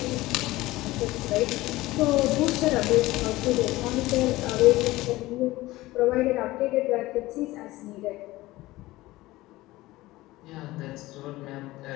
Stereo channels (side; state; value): right; quieter; 18.5 dB